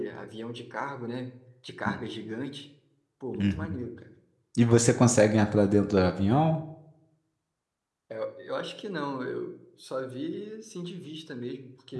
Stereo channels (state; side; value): identical; both; correlation 1.00